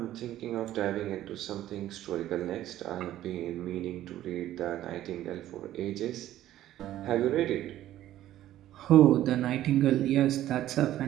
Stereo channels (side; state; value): left; quieter; 13.3 dB